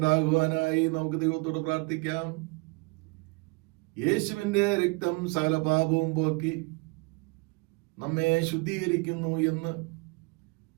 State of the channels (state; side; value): quieter; left; 29.2 dB